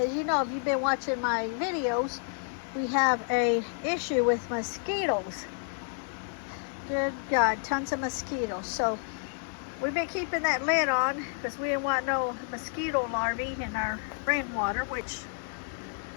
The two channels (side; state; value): right; silent; 58 dB below the other